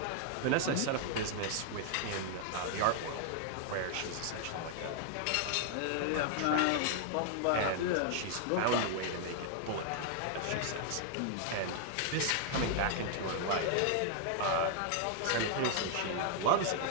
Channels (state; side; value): different; both; correlation 0.00